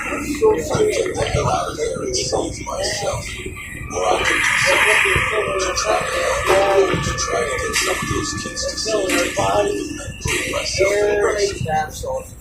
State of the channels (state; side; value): identical; both; correlation 1.00